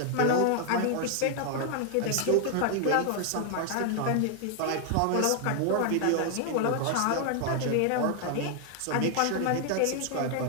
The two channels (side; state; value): both; different; correlation 0.00